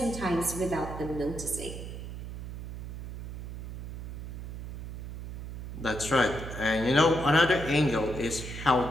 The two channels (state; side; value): noise; right; hum, 8 dB below the sound